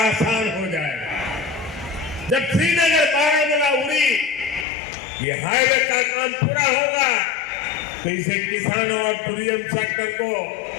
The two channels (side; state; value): right; drops out; at 4.7 s